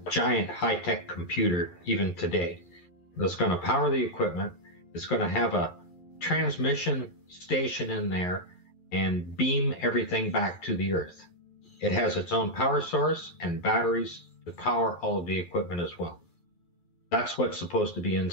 giant high-tech computer even today that's going to power the equipment. It's going to have a transmission station in there and beam everything back to the earth. It has its own power source and batteries to power all of the equipment as well. That's what's supposed to be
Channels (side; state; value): right; late; 2.4 ms